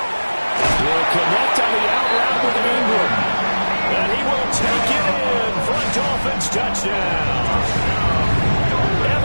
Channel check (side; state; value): both; inverted; correlation -1.00